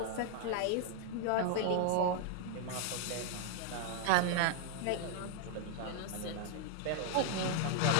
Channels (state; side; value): different; both; correlation -0.01